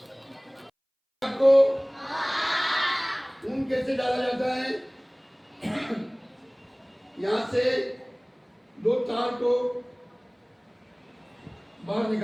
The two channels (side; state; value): both; identical; correlation 1.00